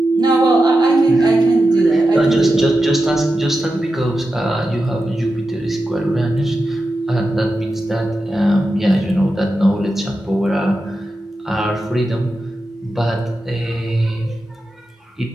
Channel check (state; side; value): normal; both; correlation 0.90